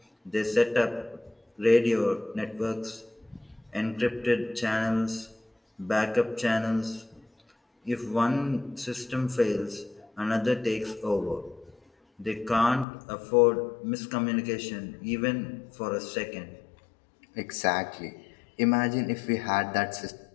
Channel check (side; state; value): right; drops out; at 12.9 s